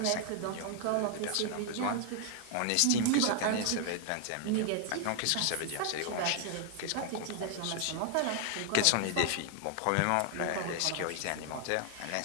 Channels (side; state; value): both; different; correlation 0.00